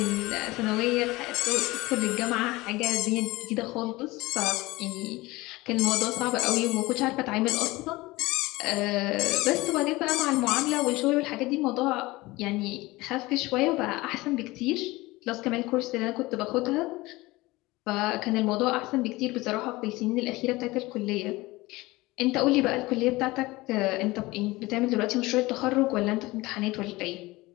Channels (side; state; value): right; quieter; 20.6 dB